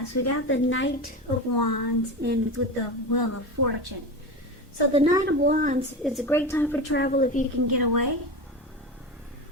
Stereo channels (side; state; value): both; normal; correlation 0.24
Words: we got the Knight of Wands and with the Wheel of Fortune. So the Knight of Wands is a great time for travel if you can get away.